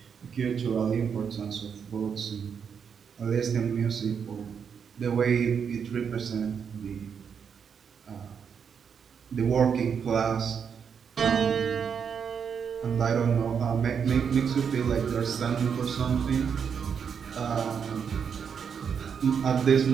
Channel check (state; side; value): quieter; left; 6.9 dB